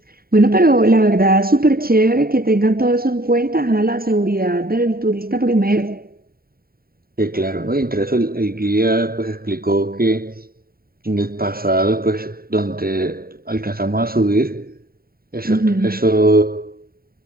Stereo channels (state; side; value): late; left; 0.43 ms